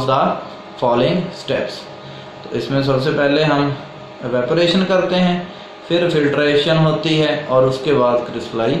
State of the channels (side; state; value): both; identical; correlation 1.00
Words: the following steps। तो इसमें सबसे पहले हम एवेपोरेशन करते हैं, फिर फिल्ट्रेशन होती है और उसके बाद